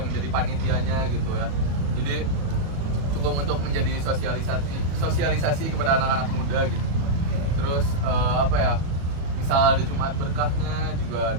menjadi panitianya gitu ya. Jadi cukup untuk menjadi sosialisasi kepada anak-anak muda gitu. Terus apa ya? Misal ada Jumat berkahnya juga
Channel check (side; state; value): left; late; 37 ms